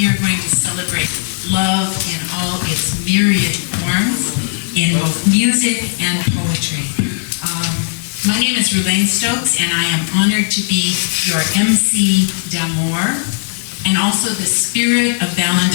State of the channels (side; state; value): right; silent; 66 dB below the other